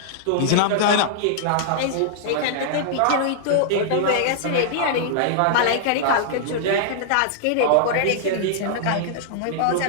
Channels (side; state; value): both; different; correlation -0.01